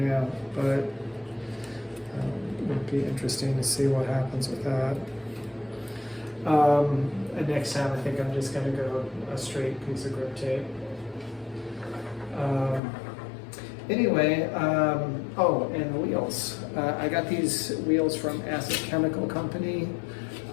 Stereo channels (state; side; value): drops out; right; at 12.8 s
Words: but it'll be interesting to see what happens with that. And next time I think I'm just going to go a straight piece of grip tape. Anyway, oh, and the wheels. I got these wheels from S.O.S.C Chemical Company.